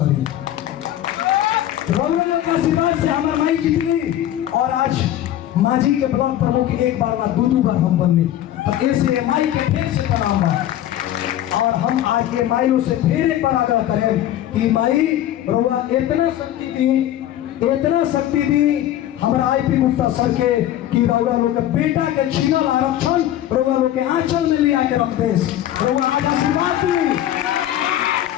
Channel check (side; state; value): right; quieter; 12.4 dB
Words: करी। रौनक के आशीर्वाद से हमरा माई जीतली और आज मांझी के ब्लॉक प्रमुख एक बार ना दो बार हम बननी, तो ऐसे माई के फिर से प्रणाम बा। और हम आज के माइयों से फिर एक बार आग्रह करें कि माई रोवा इतना शक्ति दी हमारा आईपी गुप्ता सर के कि रउआ लोग के बेटा के छीनल आरक्षण रउआ लोग के आंचल में ले आके रख देस। रउआ आज आशीर्वाद दी,